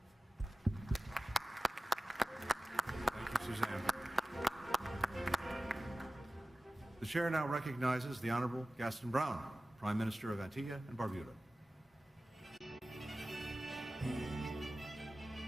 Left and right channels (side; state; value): both; normal; correlation 0.96